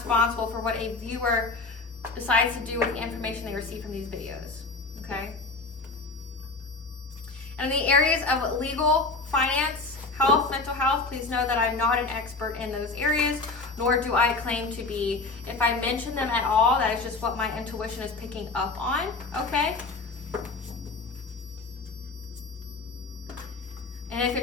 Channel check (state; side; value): quieter; right; 3.6 dB